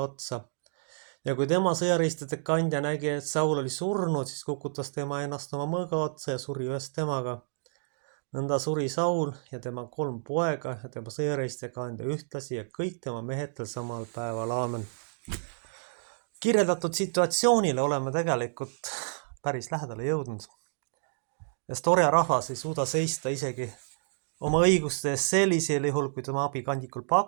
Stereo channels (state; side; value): silent; left; digital silence